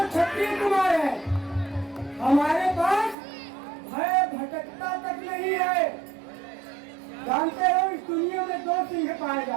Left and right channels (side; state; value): left; drops out; at 3.2 s